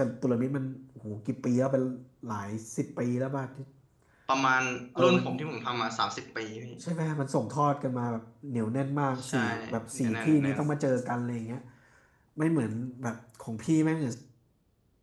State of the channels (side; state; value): both; identical; correlation 1.00